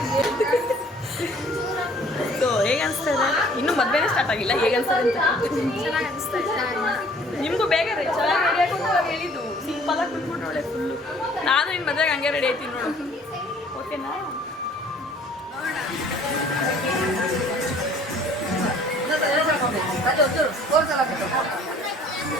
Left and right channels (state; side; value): normal; both; correlation 0.55